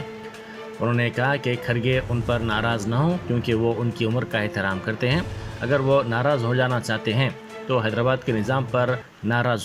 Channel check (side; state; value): both; identical; correlation 1.00